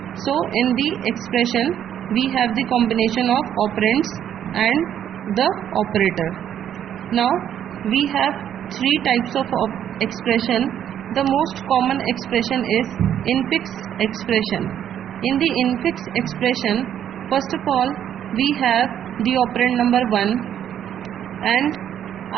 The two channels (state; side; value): quieter; left; 9.9 dB